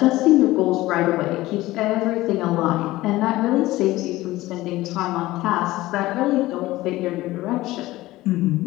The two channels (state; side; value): quieter; right; 17.6 dB